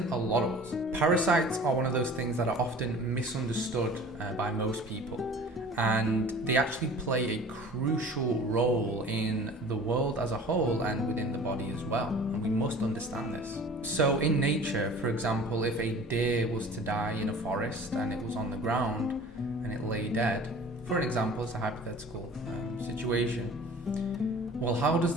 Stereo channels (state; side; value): normal; both; correlation 0.44